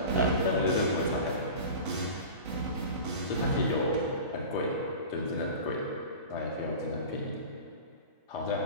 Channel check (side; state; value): both; inverted; correlation -0.34